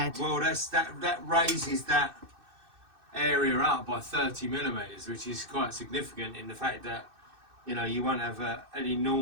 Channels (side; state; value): left; late; 2.6 ms